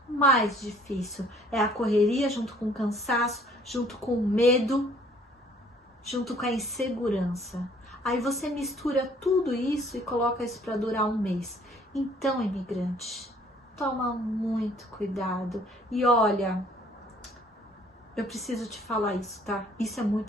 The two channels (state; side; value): normal; both; correlation 0.58